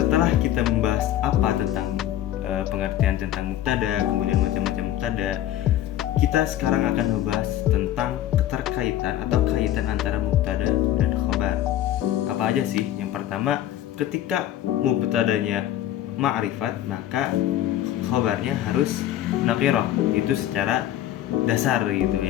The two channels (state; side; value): quieter; right; 12.5 dB